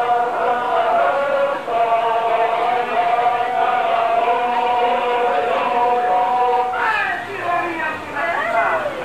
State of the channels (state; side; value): identical; both; correlation 1.00